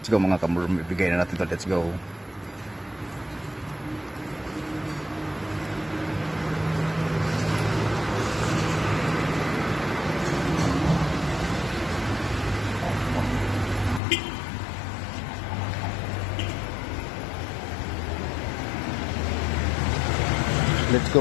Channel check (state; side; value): drops out; right; at 14.0 s